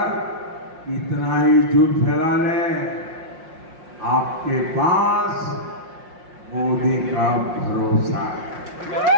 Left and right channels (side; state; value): left; late; 5.6 ms